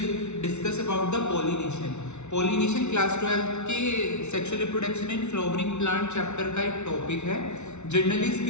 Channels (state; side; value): late; right; 0.82 ms